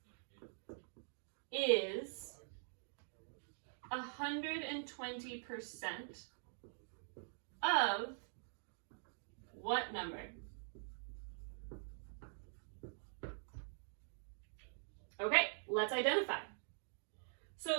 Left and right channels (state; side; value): silent; left; digital silence